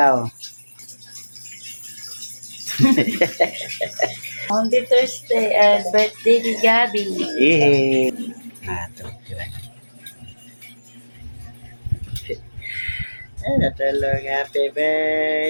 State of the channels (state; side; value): inverted; both; correlation -1.00